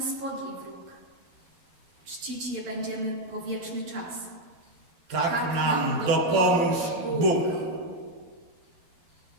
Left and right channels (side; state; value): left; late; 12 ms